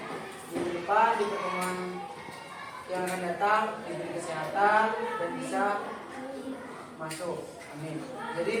minggu depan di pertemuan yang akan datang diberi kesehatan dan bisa masuk. Amin.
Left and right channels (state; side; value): identical; both; correlation 1.00